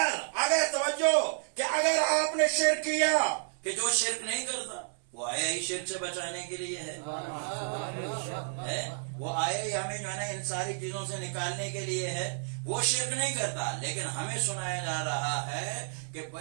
توجہ کہ اگر آپ نے شرک کیا، کہ جو شرک نہیں کرتا وہ آیا ہی شرک سے بچانے کے لیے ہے، وہ آیا ہی ہمیں جو ہے نا ان ساری چیزوں سے نکالنے کے لیے ہے، وہ شرک نہیں کرتا. لیکن ہمیں سنایا جا رہا ہے کہ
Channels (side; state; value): left; silent; 57 dB below the other